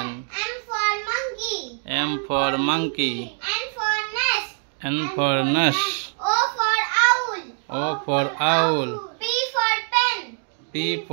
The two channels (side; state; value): left; silent; 56 dB below the other